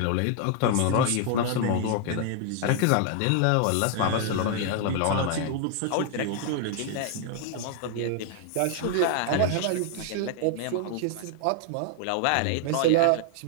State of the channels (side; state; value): both; different; correlation 0.00